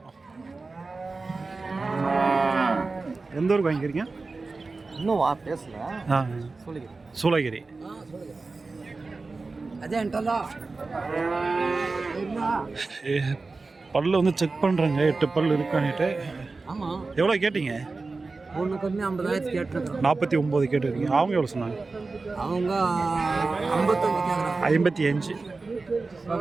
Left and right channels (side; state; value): left; quieter; 3.8 dB